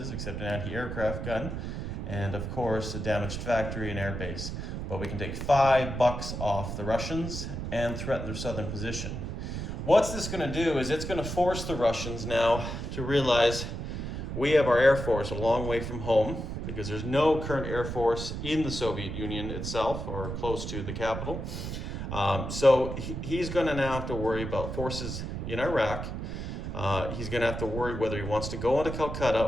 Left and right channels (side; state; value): right; noise; rumble, 5 dB below the sound